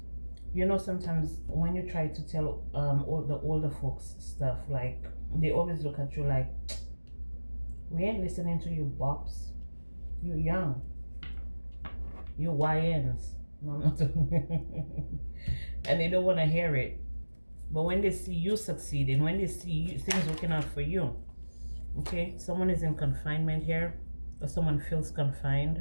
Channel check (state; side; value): inverted; both; correlation -1.00